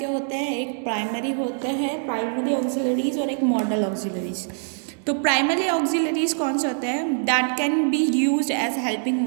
होते हैं, एक प्राइमरी होते हैं प्राइमरी ऑक्सिलरीज और एक मॉडल ऑक्सिलरीज. तो प्राइमरी ऑक्सिलरीज कौन से होते हैं? That can be use as helping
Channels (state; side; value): silent; left; digital silence